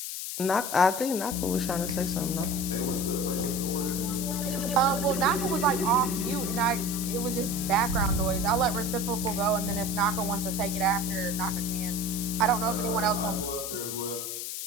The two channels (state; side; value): noise; left; hiss, 5 dB below the sound